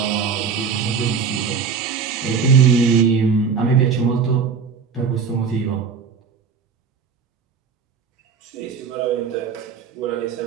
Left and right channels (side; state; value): left; quieter; 6.0 dB